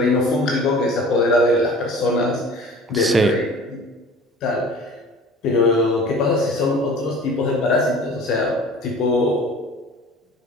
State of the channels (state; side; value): normal; both; correlation 0.43